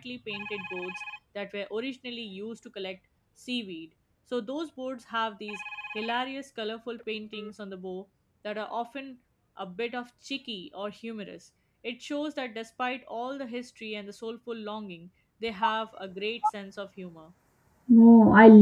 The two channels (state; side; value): identical; both; correlation 1.00